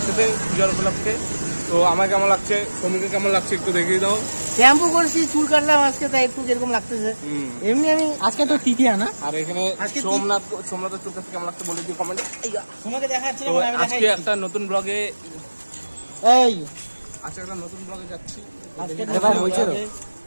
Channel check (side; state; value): both; inverted; correlation -1.00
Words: পূজার উপলক্ষে। তো আমার কেমন লাগছে, সমীকে কেমন লাগছে একটু দেখিয়ে দাও। শ্যাম্পু করছি, চুল কাটলাম আজকে, তাই একটু এরকম লাগতেছে। এমনি আমি আজকে তো তৃতীয়া না, আর এখানে সোমনাথের চুল কাটছে কেমন লাগছে বলে দিও কমেন্টে। তোমাকে দেখাচ্ছি আজকে একটা নতুন ব্লগে যাচ্ছি।